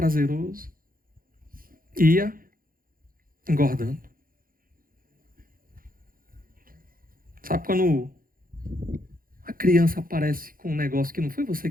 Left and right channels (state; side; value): late; left; 0.41 ms